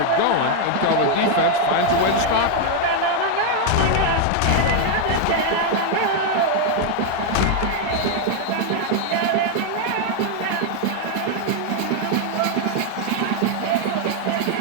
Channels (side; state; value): both; different; correlation 0.00